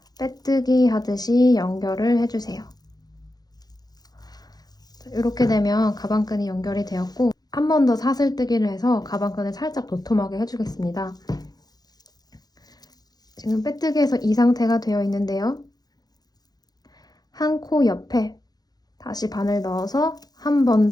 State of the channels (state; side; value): late; right; 0.19 ms